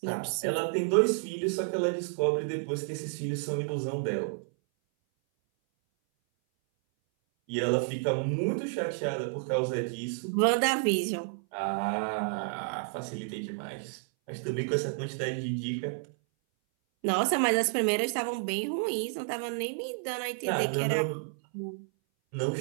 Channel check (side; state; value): left; silent; 57 dB below the other